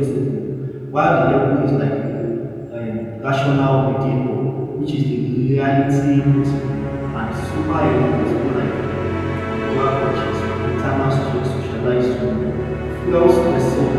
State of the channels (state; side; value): identical; both; correlation 1.00